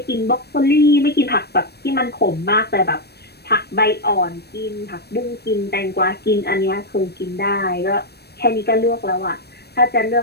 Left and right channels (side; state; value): right; late; 0.47 ms